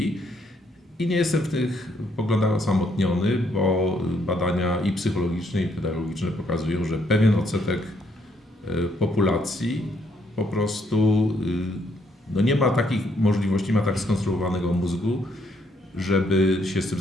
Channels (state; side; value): normal; both; correlation 0.71